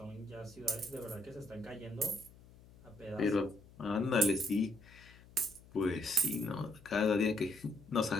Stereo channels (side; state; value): left; noise; hum, 23 dB below the sound